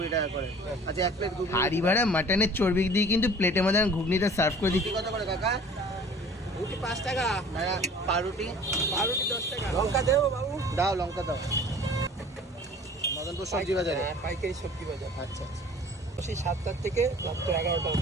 টাকা করে। আচ্ছা, এক প্লেট ঘুগনি। হাড়ি ভাড়া মাটনের চর্বি দিয়ে কিন্তু প্লেটের মধ্যে ঘুগনিটা সার্ভ করে দিচ্ছি। কত করে কাকা? রুটি 5 টাকা, পাউরুটি? পাউরুটি 10 টাকা। লঙ্কা দেবো বাবু? দাও, লঙ্কা দাও। মদনপুর সবজি বাজারে? হ্যাঁ, পাইকারি সবজি বাজার। আচ্ছা আচ্ছা। সেই 7টা থেকে রাত 11টা।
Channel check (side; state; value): both; normal; correlation 0.47